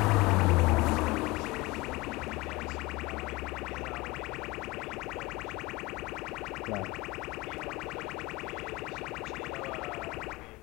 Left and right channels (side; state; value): right; quieter; 22.2 dB